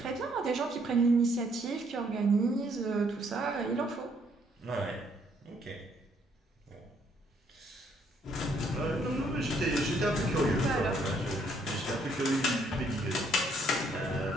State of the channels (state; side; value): normal; both; correlation 0.68